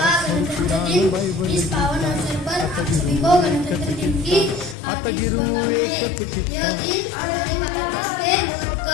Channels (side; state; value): right; drops out; at 4.8 s